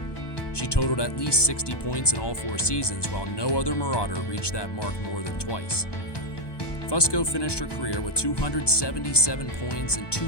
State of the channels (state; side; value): late; right; 1.2 ms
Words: She totaled at least 60 points in all 4 seasons, while no other Marauder reached that mark more than twice. Fusco finished her career with 277 points and